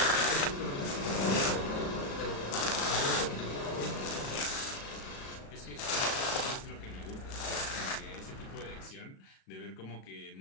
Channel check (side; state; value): right; late; 37 ms